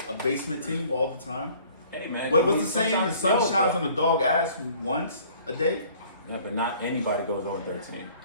a basement team all the time. Hey man, What's the saying? The sun shines on the dog ass once a day. Yeah, but not anybody goes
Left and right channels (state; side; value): inverted; both; correlation -0.54